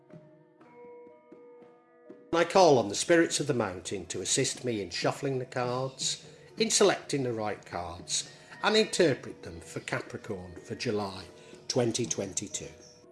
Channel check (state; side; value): identical; both; correlation 1.00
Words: I call on the spirits of the mountain to assist me in shuffling the cards, in selecting the right cards, and interpret them for Capricorn for July 2022.